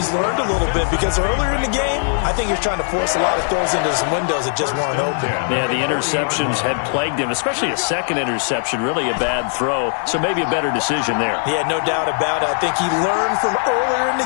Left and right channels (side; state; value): right; silent; digital silence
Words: learned a little bit because earlier in the game, I think he was trying to force a lot of throws into some windows that just weren't open. Yeah, the interceptions had plagued him, especially a second interception, really a bad throw. So maybe a better decision there. Yeah, no doubt about it. I think he learned from earlier in